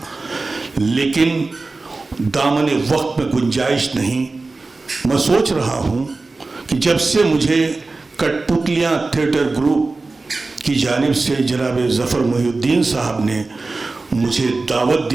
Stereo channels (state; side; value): quieter; left; 3.5 dB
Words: लेकिन दामन वक्त में गुंजाइश नहीं। मैं सोच रहा हूँ कि जब से मुझे कठपुतलियाँ थिएटर ग्रुप की जानिब से जनाब ज़फ़र मोहिउद्दीन साहब ने मुझे दावत